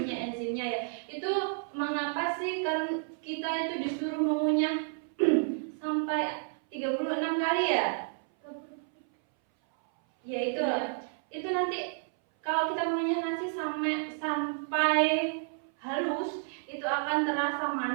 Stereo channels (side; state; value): left; silent; 57 dB below the other